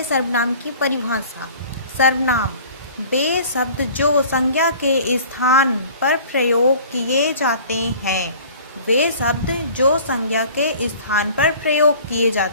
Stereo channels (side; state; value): both; inverted; correlation -0.46